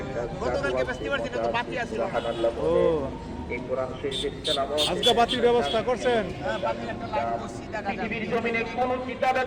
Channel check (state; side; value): identical; both; correlation 1.00